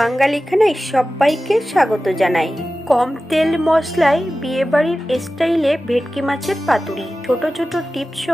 সবাইকে স্বাগত জানাই। কম তেল মশলায় বিয়েবাড়ির স্টাইলে ভেটকি মাছের পাতুরি। ছোট ছোট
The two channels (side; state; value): both; normal; correlation 0.95